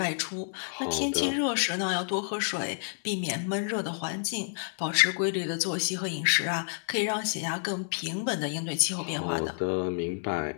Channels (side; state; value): right; silent; digital silence